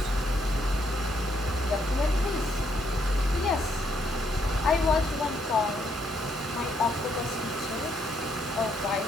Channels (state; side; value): normal; both; correlation 0.73